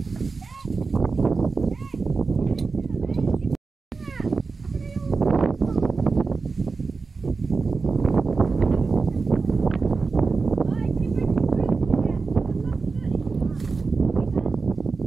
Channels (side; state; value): left; quieter; 4.4 dB